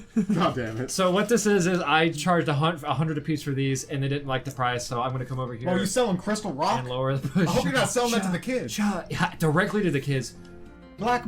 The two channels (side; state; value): both; identical; correlation 1.00